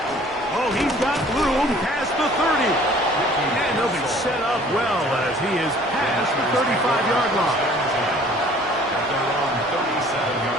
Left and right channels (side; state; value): both; normal; correlation 0.53